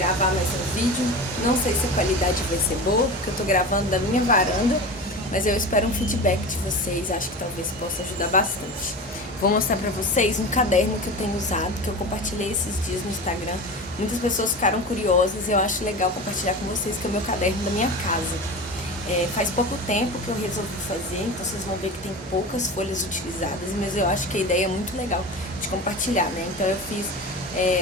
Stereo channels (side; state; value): both; normal; correlation 0.29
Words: mais um vídeo. Não sei se a qualidade vai ser boa, porque eu tô gravando da minha varanda, mas eu espero um feedback de vocês, acho que talvez possa ajudar bastante. Vou mostrar pra vocês um caderno que eu tenho usado, que eu compartilhei esses dias no Instagram. Muitas pessoas ficaram curiosas e eu acho legal compartilhar com vocês, que é o meu caderno da minha casa. Faz pouco tempo que eu resolvi fazer, então vocês vão ver que tem poucas folhas utilizadas, mas eu acho que a ideia é muito legal de compartilhar, né? Então eu fiz